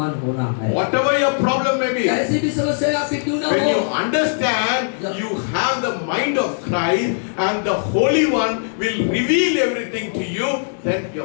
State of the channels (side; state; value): right; silent; digital silence